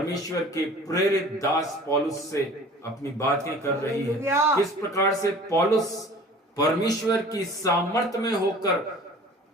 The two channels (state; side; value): normal; both; correlation 0.45